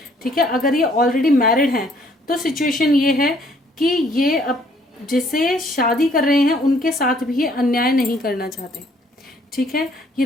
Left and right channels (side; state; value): both; normal; correlation 0.63